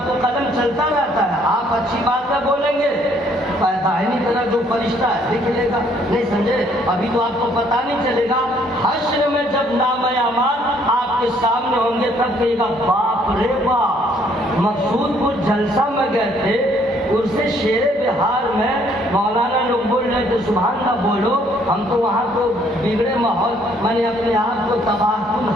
تو قدم چلتا رہتا ہے. آپ اچھی باتیں بولیں گے دائنی طرف جو فرشتہ ہے لکھ لے گا. نہیں سمجھے؟ ابھی تو آپ کو پتہ نہیں چلے گا. حشر میں جب نام اعمال آپ کے سامنے ہوں گے تب کہے گا باپ رے باپ. مقصود کو جلسہ میں گئے تھے اسے شیر بہار میں مولانا لوگ بول رہے تھے سبحان اللہ بولو. ہم تو وہاں تو بگڑے ماحول میں نے اپنے آپ کو تباہ کن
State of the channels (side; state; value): both; normal; correlation 0.64